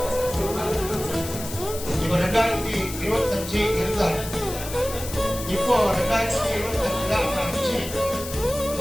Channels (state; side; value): noise; left; hiss, 10 dB below the sound